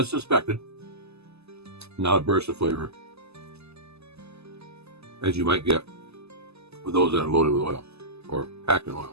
suspected, not a burst of flavor, as you might get with those that are loaded with oil or packed in oil.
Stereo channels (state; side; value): late; left; 0.79 ms